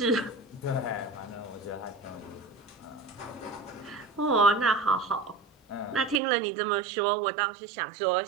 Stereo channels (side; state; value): left; drops out; at 6.2 s